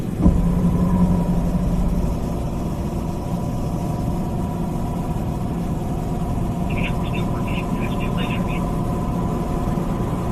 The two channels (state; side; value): identical; both; correlation 1.00